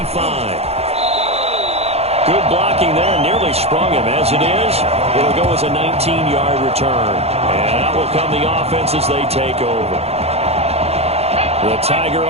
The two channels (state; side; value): late; left; 0.30 ms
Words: Good blocking there, nearly sprung him. As it is, it'll go as a 19-yard return. And out will come the offense as they take over. The Tiger